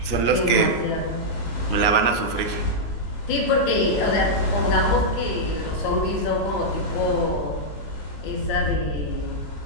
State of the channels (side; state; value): right; late; 19 ms